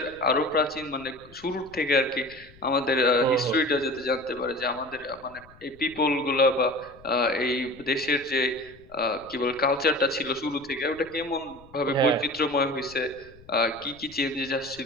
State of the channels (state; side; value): noise; left; rumble, 24 dB below the sound